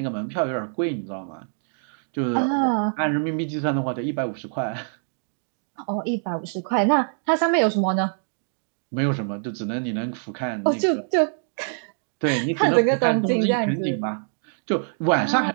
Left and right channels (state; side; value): silent; left; digital silence